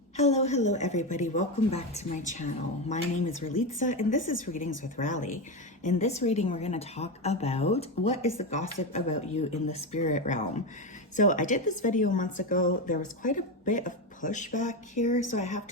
Hello everybody. Welcome back to my channel. My name is Ralitza and this is Readings with Rally. In this reading, we're going to talk about what is the gossip about you in the spirit realm. So I did this video months ago. There was quite a bit of pushback here. So I have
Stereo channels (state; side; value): normal; both; correlation 0.14